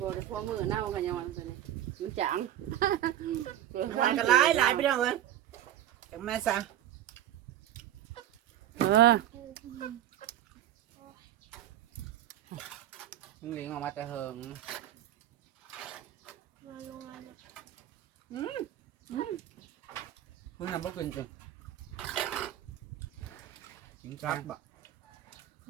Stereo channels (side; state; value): left; quieter; 12.1 dB